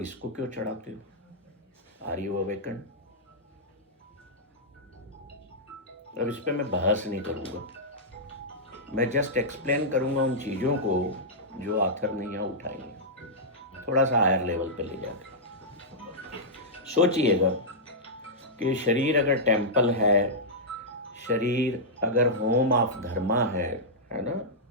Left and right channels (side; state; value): both; normal; correlation -0.10